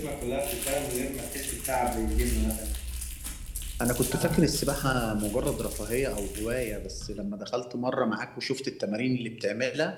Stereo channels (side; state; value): both; identical; correlation 1.00